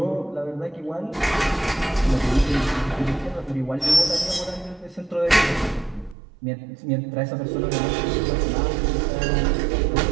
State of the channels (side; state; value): left; drops out; at 6.2 s